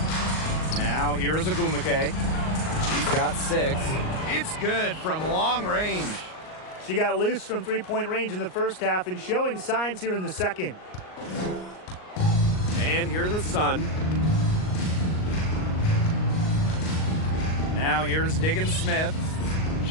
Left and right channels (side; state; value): right; late; 38 ms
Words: Now here's Ogumake. She's got 6. It's good from long range. She got loose from three-point range in the first half and showing signs here in the second. And here the Sun. Now here's Diggin Smith.